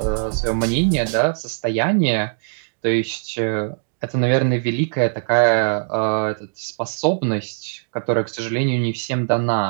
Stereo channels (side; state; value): left; silent; digital silence